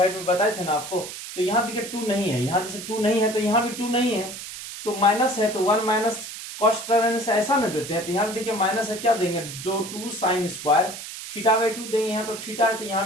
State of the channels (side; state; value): right; noise; hiss, 10 dB below the sound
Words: में बताए थे ना आपको। तो यहाँ देखिए 2 नहीं है, यहाँ जैसे 2 नहीं है तो यहाँ भी 2 नहीं है, तो माइनस है, तो 1 माइनस कॉस थीटा रहने से ऐसा न देते हैं, तो यहाँ भी देखिए माइनस है, क्या देंगे, 2 साइन स्क्वायर थीटा बाई 2 देंगे, यहाँ तो थीटा है तो यहाँ